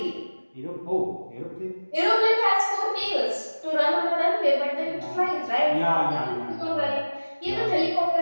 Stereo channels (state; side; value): inverted; both; correlation -1.00